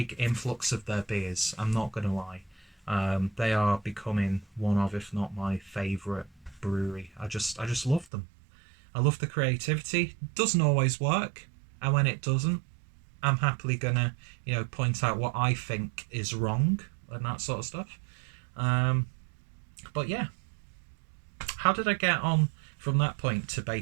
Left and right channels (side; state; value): left; drops out; at 8.1 s